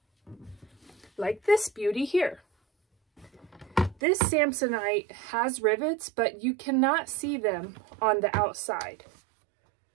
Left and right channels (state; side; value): drops out; left; at 4.0 s